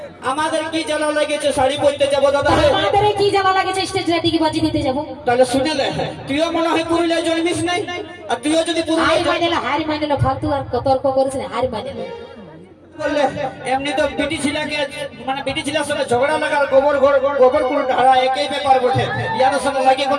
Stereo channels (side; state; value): both; identical; correlation 1.00